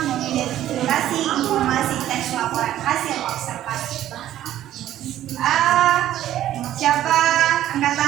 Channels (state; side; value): quieter; left; 12.6 dB